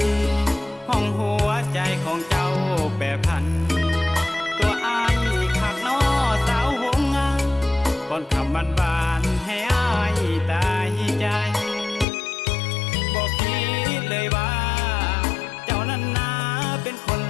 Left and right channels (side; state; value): right; drops out; at 12.1 s